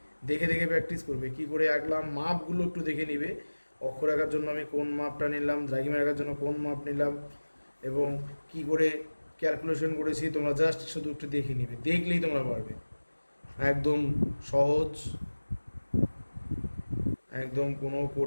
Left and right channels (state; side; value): inverted; both; correlation -1.00